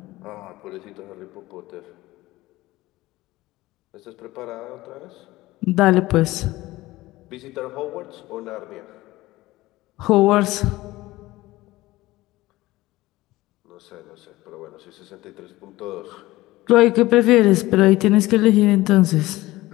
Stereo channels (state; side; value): quieter; right; 18.2 dB